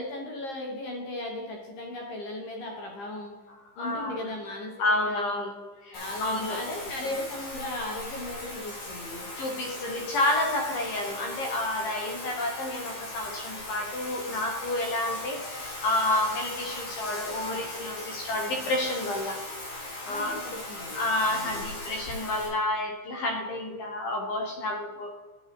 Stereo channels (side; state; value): right; late; 15 ms